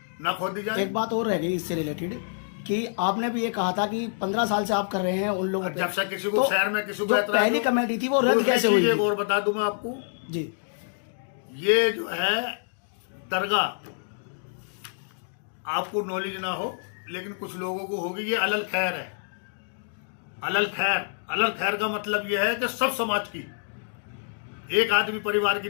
न खोदी जाए। एक बात और रह गई इससे रिलेटेड कि आपने भी ये कहा था कि 15 साल से आप कर रहे हैं उन लोगों जब से किसी को तो शहर में किसी को जो एतराज पहली हो, कमेटी थी वो रद्द दूसरी कैसे चीज हुई? एक और बता दूं मैं आपको, जी। ये जो है दरगाह आपको नॉलेज ना हो लेकिन कुछ लोगों को होगी, ये अलल खैर है। अलल खैर का मतलब यह है कि सब समाज की, एक आदमी परिवार की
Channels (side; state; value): right; silent; digital silence